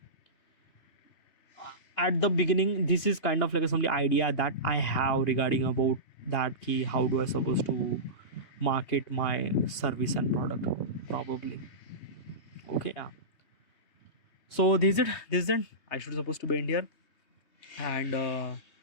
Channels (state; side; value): late; right; 3.2 ms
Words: At the beginning this is kind of like some idea that I have regarding about that key, how do I supposed to market my service and product, probably. Okay, yeah, so this is it I should supposed to be in here, and